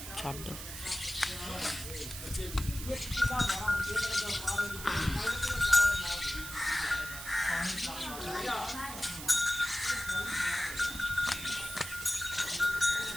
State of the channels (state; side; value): noise; right; hiss, 9 dB below the sound